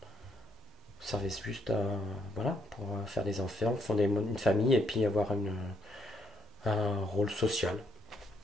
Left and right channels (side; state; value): both; normal; correlation 0.72